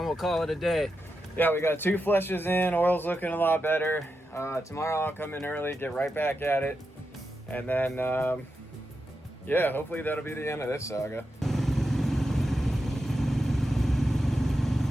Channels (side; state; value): both; normal; correlation 0.88